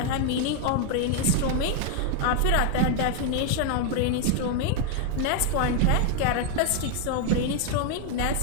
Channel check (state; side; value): different; both; correlation 0.00